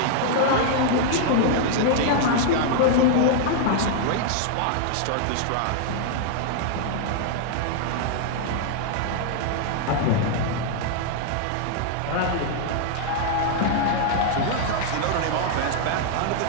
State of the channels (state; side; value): different; both; correlation 0.00